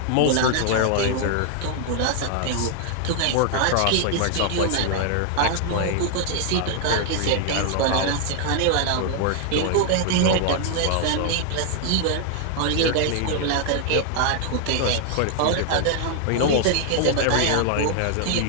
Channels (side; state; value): both; different; correlation 0.00